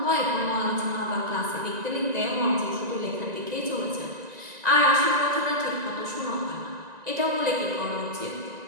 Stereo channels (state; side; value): late; left; 1.9 ms